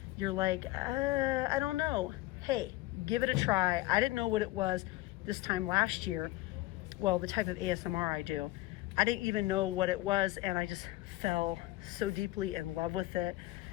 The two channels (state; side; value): quieter; right; 18.1 dB